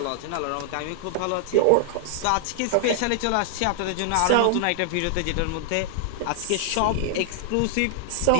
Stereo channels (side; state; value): both; different; correlation -0.01